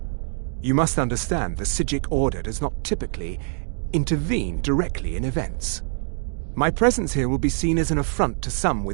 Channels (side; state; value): left; silent; 57 dB below the other